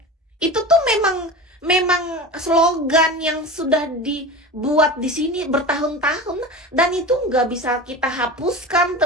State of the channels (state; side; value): normal; both; correlation 0.31